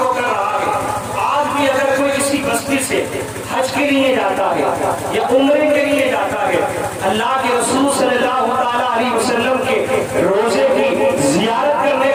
کر رہا ہے. آج بھی اگر کوئی کسی بستی سے حج کے لیے جاتا ہے یا عمرے کے لیے جاتا ہے، اللہ کے رسول صلی اللہ تعالیٰ علیہ وسلم کے روزے کی زیارت کرنے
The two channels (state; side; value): identical; both; correlation 1.00